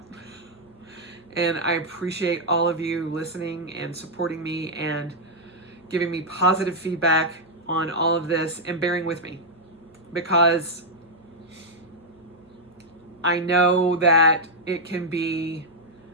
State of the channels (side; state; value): right; noise; hum, 29 dB below the sound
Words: And I appreciate all of you listening and supporting me and giving me positive feedback on all of this and bearing with me, because I know that it can be